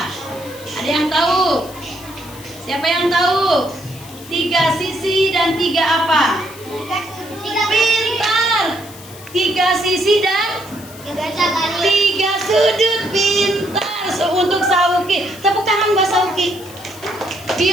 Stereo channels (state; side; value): noise; left; hiss, 18 dB below the sound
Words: Ada yang tahu? Siapa yang tahu? 3 sisi dan 3 apa? Pintar. 3 sisi dan 3 sudut. Pintar. Untuk Sauki, tepuk tangan Mbak Sauki.